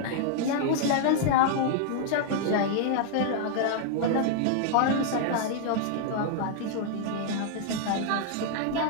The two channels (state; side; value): different; both; correlation -0.01